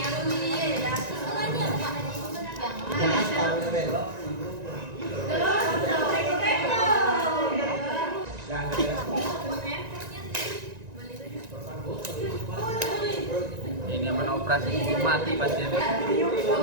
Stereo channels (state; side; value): late; left; 1.9 ms